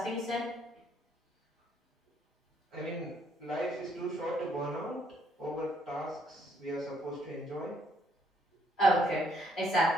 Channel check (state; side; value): normal; both; correlation 0.69